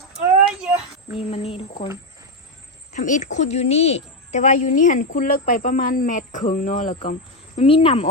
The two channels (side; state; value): both; normal; correlation 0.08